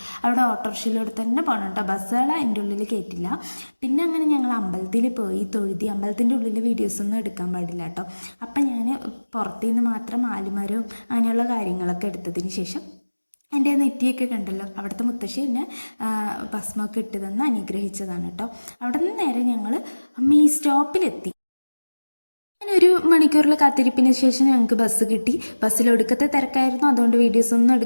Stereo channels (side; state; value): both; inverted; correlation -1.00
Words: അവിടെ ഓട്ടോറിക്ഷയിലൂടെ തന്നെ പോകണം കേട്ടോ. ബസ്സുകൾ അതിൻ്റെ ഉള്ളിൽ കയറ്റില്ല. പിന്നെ അങ്ങനെ ഞങ്ങൾ അമ്പലത്തിൽ പോയി തൊഴുതി. അമ്പലത്തിൻ്റെ ഉള്ളിൽ വീഡിയോസൊന്നും എടുക്കാൻ പാടില്ല കേട്ടോ. അപ്പം ഞാൻ പുറത്തു നിന്ന് മാത്രം ആലുമരവും അങ്ങനെയുള്ള കാര്യങ്ങളൊക്കെ എടുത്തതിന് ശേഷം എൻ്റെ നെറ്റിയൊക്കെ കണ്ടല്ലോ, അവിടുത്തെ മുത്തശ്ശി എന്നെ ഭസ്മമൊക്കെ ഇട്ട് തന്ന് അനുഗ്രഹിച്ചതാണ് കേട്ടോ. അവിടെ നിന്ന് നേരെ ഞങ്ങൾ ഈ സ്റ്റോപ്പിലെത്തി. ഒരു മണിക്കൂറിൽ കാത്തിരിപ്പിന് ശേഷം ഞങ്ങൾക്ക് ബസ് കിട്ടി. ബസ്സിൽ ഒടുക്കത്തെ തിരക്കായിരുന്നു, അതുകൊണ്ട് വീഡിയോസ് ഒന്നും